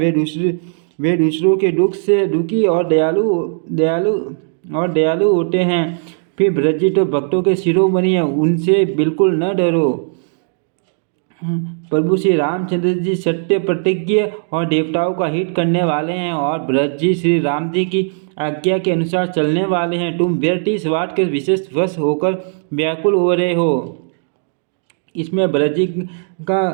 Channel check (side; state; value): left; silent; digital silence